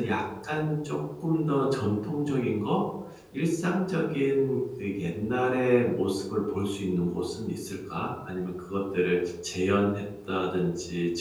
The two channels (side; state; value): both; identical; correlation 1.00